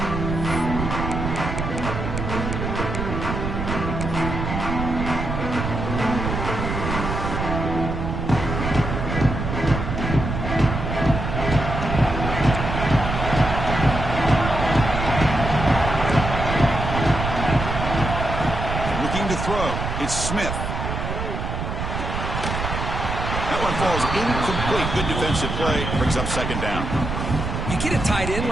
It's Smith. That one falls incomplete. Good defensive play. Brings up second down. You get a tight end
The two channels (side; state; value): right; noise; rumble, 3 dB below the sound